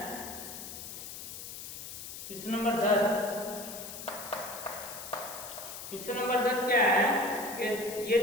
क्वेश्चन नंबर 10। क्वेश्चन नंबर 10 क्या है कि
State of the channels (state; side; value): noise; left; hiss, 10 dB below the sound